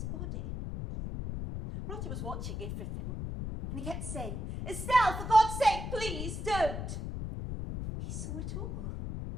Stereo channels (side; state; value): left; noise; rumble, 5 dB below the sound